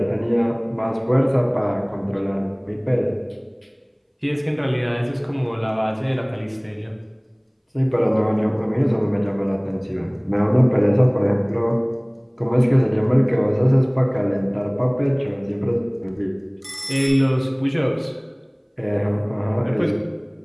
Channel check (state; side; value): identical; both; correlation 1.00